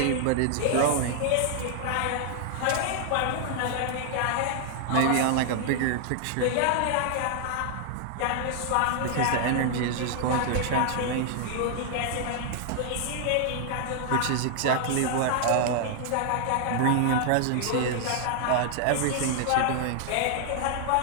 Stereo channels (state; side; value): different; both; correlation 0.00